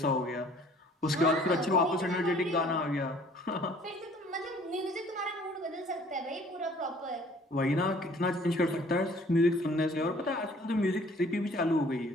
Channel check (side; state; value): both; normal; correlation 0.55